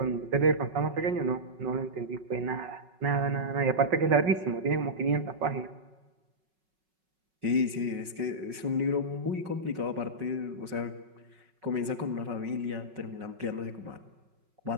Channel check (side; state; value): left; late; 5.4 ms